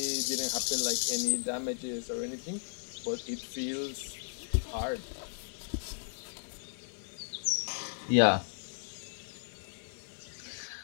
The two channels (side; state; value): right; silent; digital silence